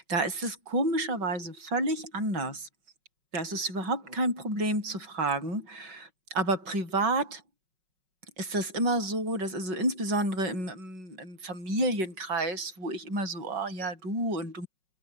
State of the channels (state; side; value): late; left; 5.4 ms